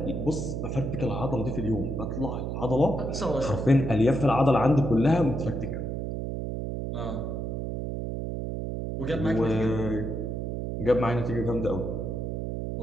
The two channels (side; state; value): right; noise; hum, 3 dB below the sound